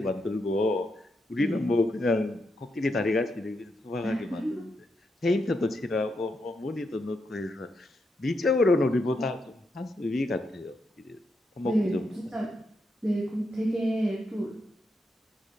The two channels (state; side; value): normal; both; correlation 0.82